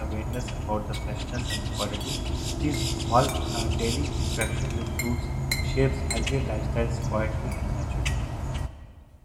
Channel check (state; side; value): identical; both; correlation 1.00